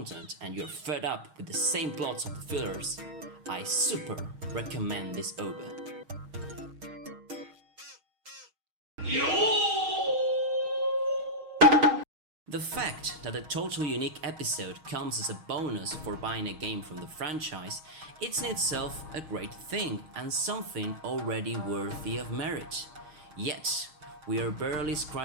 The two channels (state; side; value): late; left; 6.4 ms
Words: and you're fed up with the same plots of the fillers, I super recommend this OVA. The fact that a totally unique episode comes as a bonus for buying a game from the franchise, it's in itself a great thing and something already worthy of merit. Yet, we are barely